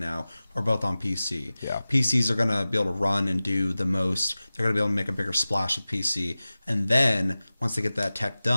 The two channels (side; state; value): both; inverted; correlation -0.96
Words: are both on PC. Yeah. PCs are going to be able to run and do the most. They're going to be able to make a bigger splash with PC. And then once they get that tech